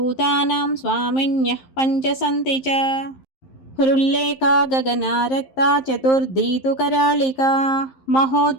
स्वामिन्यः पञ्च सन्ति च हृल्लेखा गगनारक्ता चतुर्थी तु करालिका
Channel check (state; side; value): late; right; 11 ms